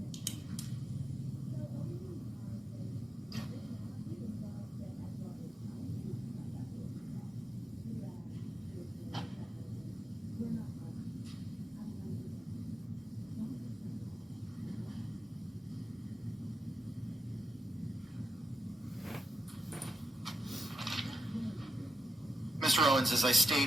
Mr. Owens, as I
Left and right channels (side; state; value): both; normal; correlation 0.87